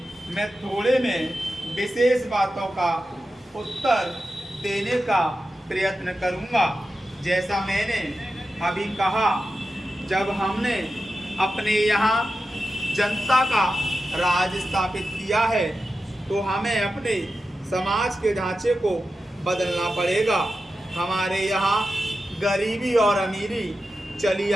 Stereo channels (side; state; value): both; normal; correlation 0.91